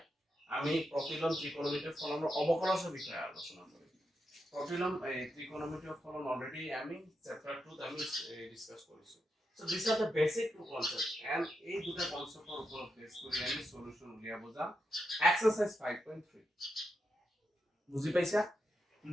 আমি প্রতিলোম ত্রিকোণমিতিৰ ফলনৰ অবকলসৰ বিষয়ে আলোচনা কৰিম প্রতিলোম ত্রিকোণমিতিৰ ফলন অলরেডি আমি চ্যাপ্টার 2 আমি ডিসকাস কৰিছো So these are the basic two concepts and এই দুটা কনসেপ্টৰ ওপৰত বেস কৰি আমি সলিউশন উলিয়াব যাম এক্সারসাইজ 5.3 বুজি পাইছা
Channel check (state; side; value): normal; both; correlation 0.85